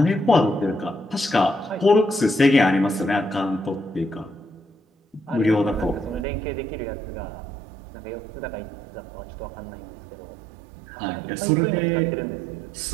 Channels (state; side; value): drops out; left; at 6.2 s